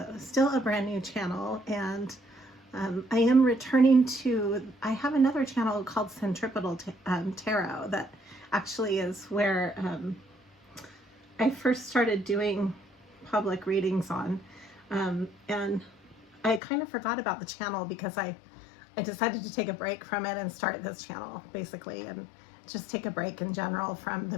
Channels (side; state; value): right; drops out; at 16.6 s